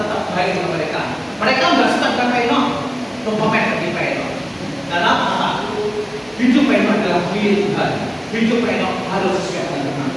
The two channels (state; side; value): identical; both; correlation 1.00